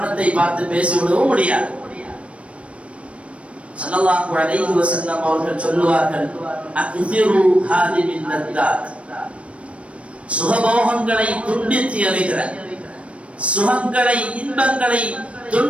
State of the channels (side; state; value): left; late; 0.062 ms